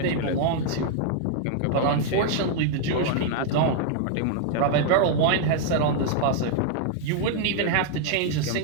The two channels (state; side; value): different; both; correlation 0.00